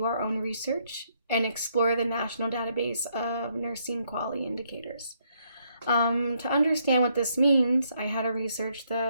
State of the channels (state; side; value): inverted; both; correlation -0.73